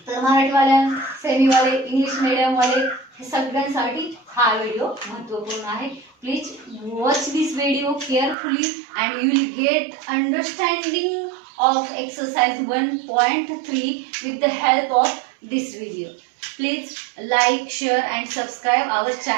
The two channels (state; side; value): drops out; left; at 8.3 s